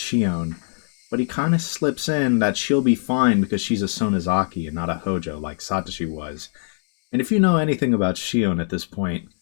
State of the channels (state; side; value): silent; right; digital silence